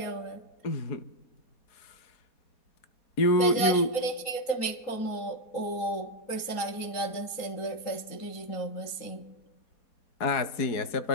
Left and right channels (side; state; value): right; late; 3.9 ms